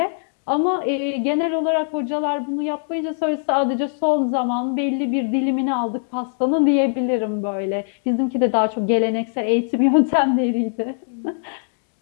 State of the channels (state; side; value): silent; right; 65 dB below the other